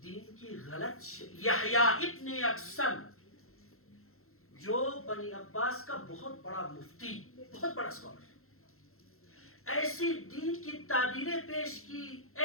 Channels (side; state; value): right; late; 0.62 ms